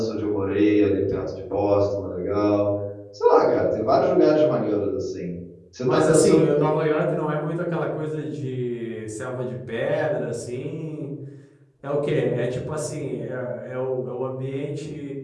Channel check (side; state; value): both; identical; correlation 1.00